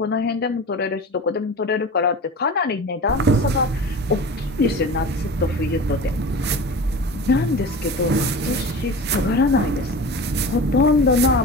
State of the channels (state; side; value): normal; both; correlation 0.34